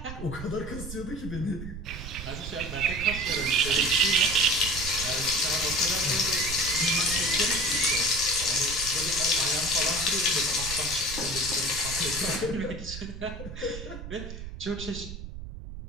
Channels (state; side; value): noise; right; rumble, 10 dB below the sound